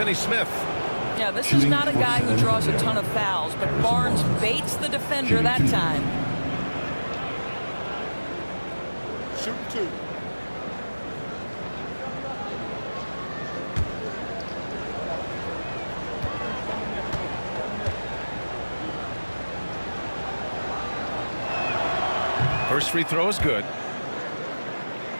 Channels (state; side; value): inverted; both; correlation -1.00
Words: Yeah, this is not a guy who draws a ton of fouls, but Barnes baits the defender that time. Shooting 2. First free throw is good.